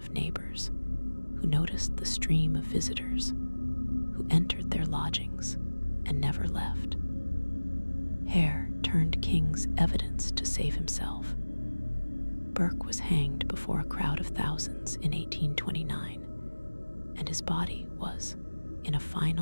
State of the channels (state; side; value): inverted; both; correlation -1.00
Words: neighbors who noticed the stream of visitors who entered their lodgings and never left. Hare turned King's evidence to save himself. Burke was hanged before a crowd of thousands in 1829, and his body was, in a